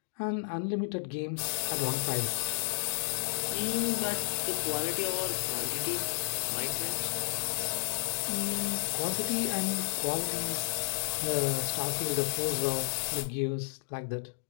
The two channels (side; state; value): right; silent; digital silence